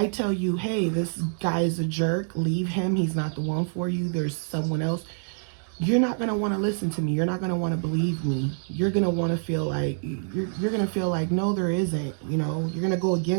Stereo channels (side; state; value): left; silent; digital silence